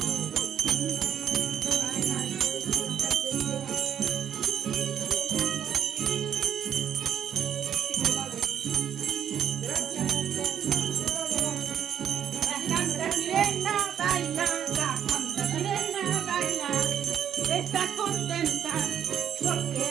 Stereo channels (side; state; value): left; quieter; 9.1 dB